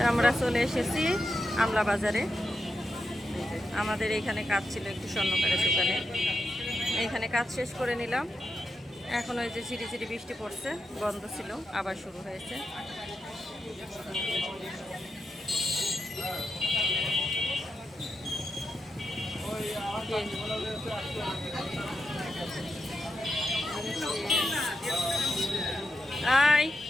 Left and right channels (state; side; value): normal; both; correlation 0.87